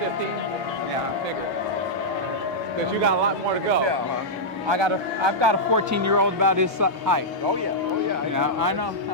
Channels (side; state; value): both; normal; correlation -0.08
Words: Because you got a lot more to go. Yeah, huh? I've got a 14-year-old about his height. Oh yeah. I know.